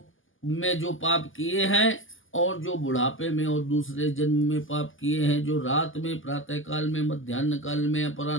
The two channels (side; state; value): right; late; 0.58 ms